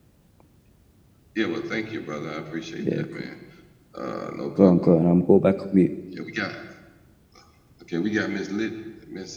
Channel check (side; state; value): both; identical; correlation 1.00